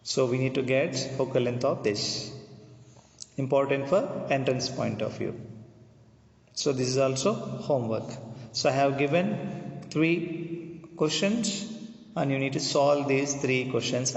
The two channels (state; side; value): identical; both; correlation 1.00